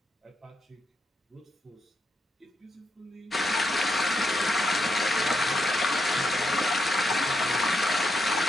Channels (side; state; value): both; normal; correlation 0.82